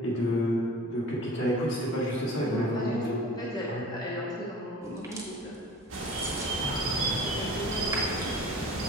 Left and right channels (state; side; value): normal; both; correlation 0.41